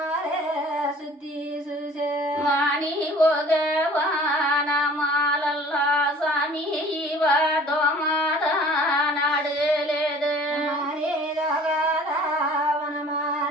సుత్తి చూసే మాని ఓగవానమాలల్లా సామి దోమాద నాడలేదు హరే దగదా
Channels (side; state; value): both; normal; correlation 0.49